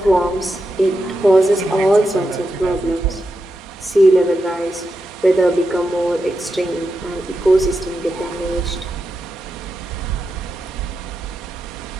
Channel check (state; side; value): normal; both; correlation 0.87